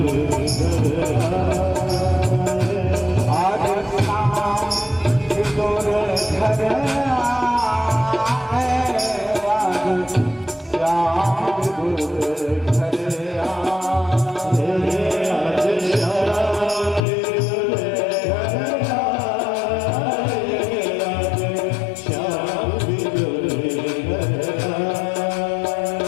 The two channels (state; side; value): drops out; right; at 17.0 s